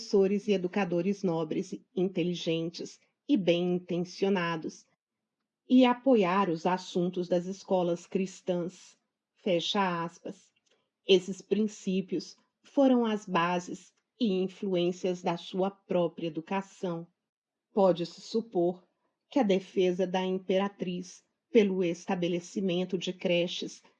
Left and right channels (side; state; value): both; identical; correlation 1.00